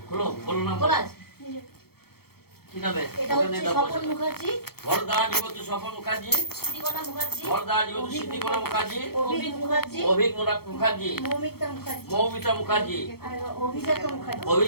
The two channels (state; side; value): late; right; 0.95 ms